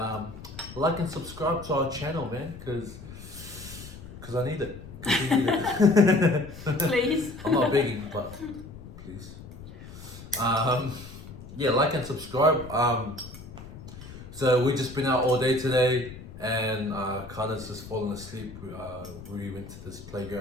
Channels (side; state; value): left; noise; rumble, 14 dB below the sound